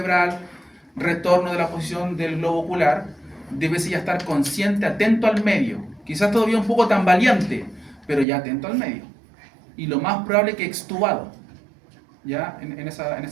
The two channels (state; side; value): drops out; left; at 8.2 s